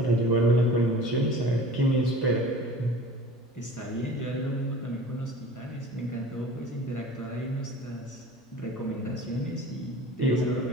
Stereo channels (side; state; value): both; normal; correlation 0.41